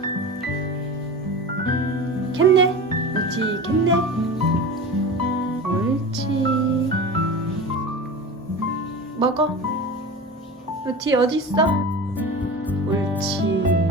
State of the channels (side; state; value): both; normal; correlation 0.31